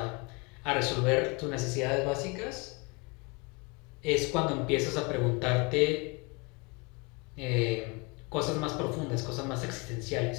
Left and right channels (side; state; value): right; quieter; 28.9 dB